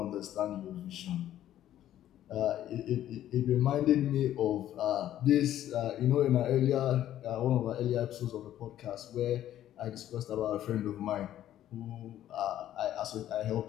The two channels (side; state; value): right; quieter; 12.2 dB